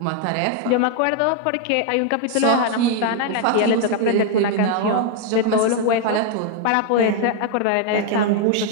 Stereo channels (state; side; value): different; both; correlation 0.00